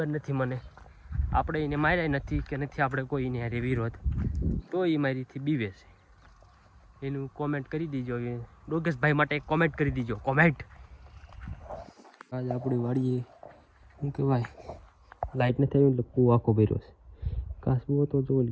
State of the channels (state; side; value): identical; both; correlation 1.00